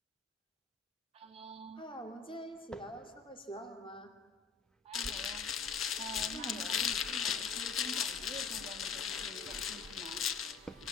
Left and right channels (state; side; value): quieter; right; 5.8 dB